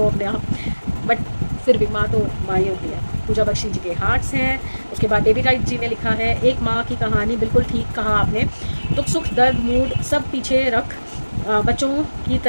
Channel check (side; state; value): both; inverted; correlation -1.00